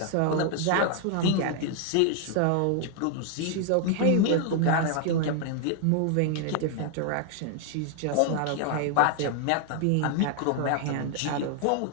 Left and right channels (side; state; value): both; different; correlation 0.00